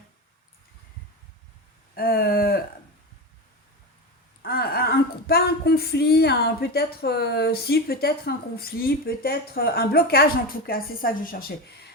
pas un conflit, peut-être un conflit, peut-être un blocage en tout cas, c'est ça que je cherchais.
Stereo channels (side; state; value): both; normal; correlation 0.21